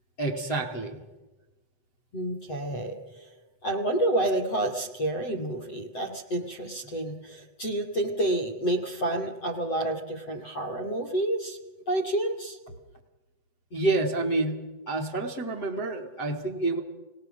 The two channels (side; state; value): right; late; 8.0 ms